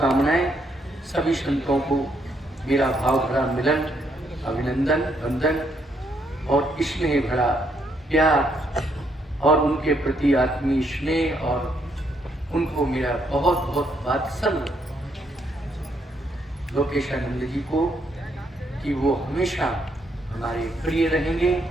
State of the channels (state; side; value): normal; both; correlation 0.73